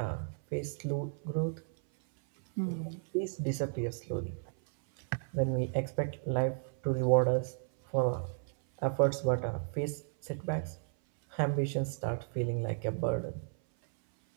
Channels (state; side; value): silent; left; 55 dB below the other